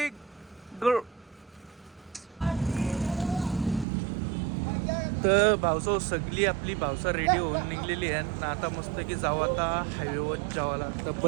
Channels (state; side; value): drops out; left; at 3.9 s